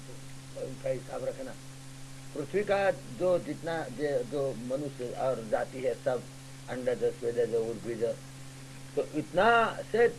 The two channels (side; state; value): both; identical; correlation 1.00